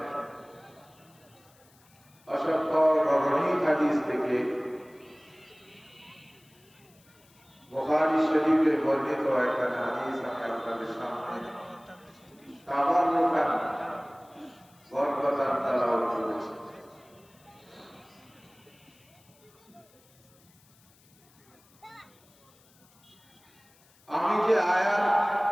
অসংখ্য গণনীয় হাদিস থেকে বুখারী শরীফে বর্ণিত একটা হাদিস আমি আপনাদের সামনে তাবাররুকান বরকতান তেলাওয়াত করেছি। আমি যে আয়াত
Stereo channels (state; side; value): noise; left; hiss, 30 dB below the sound